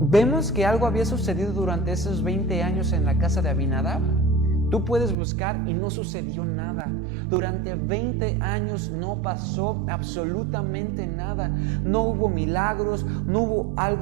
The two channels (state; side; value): drops out; left; at 5.2 s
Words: que algo había sucedido durante esos 20 años en la casa de Abinadab. Tú puedes buscar y no sucedió nada. Durante 20 años no pasó absolutamente nada. No hubo milagros, no hubo